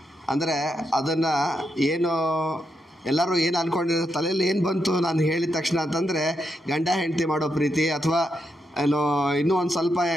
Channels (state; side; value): normal; both; correlation 0.82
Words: ಅಂದರೆ ಅದನ್ನು ಏನು ಎಲ್ಲರೂ ಏನು ಅಂದ್ಕೊಂಡಿರೋ ತಲೆಯಲ್ಲಿ ಏನು ಬಂತು ನಾನು ಹೇಳಿದ ತಕ್ಷಣ ಅಂತಂದರೆ ಗಂಡ ಹೆಂಡತಿ ಮಾಡೋ ಪ್ರೀತಿ, ಅಥವಾ ಏನೋ ಇನ್ನೂ ಒಂದು ಸ್ವಲ್ಪ